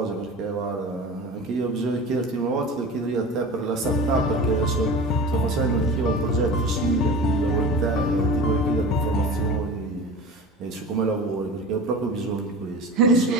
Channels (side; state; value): both; normal; correlation 0.34